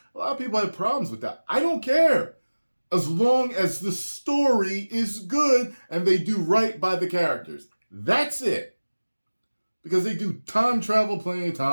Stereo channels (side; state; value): both; inverted; correlation -1.00